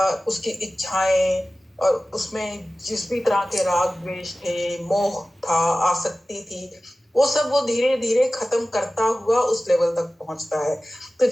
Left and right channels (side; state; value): both; normal; correlation 0.96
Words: इच्छाएं, और उसमें जिस भी तरह के राग द्वेष थे, मोह था, आसक्ति थी, वो सब वो धीरे धीरे खत्म करता हुआ उस लेवल तक पहुंचता है। तो